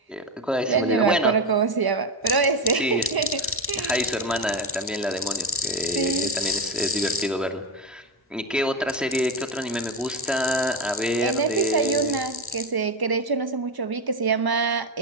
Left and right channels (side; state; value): both; normal; correlation 0.15